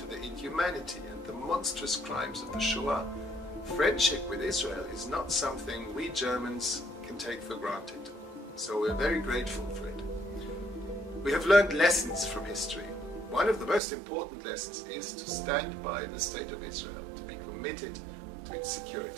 the inhumanity and the monstrous crimes of the Shoah, friendship with Israel is not something we Germans can take for granted. So we're very grateful for it. We have learned lessons from history. One of the most important lessons is to stand by the State of Israel, to be committed to its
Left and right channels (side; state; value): left; drops out; at 13.8 s